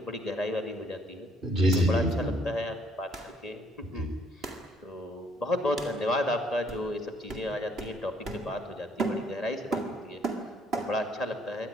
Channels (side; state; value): both; normal; correlation 0.65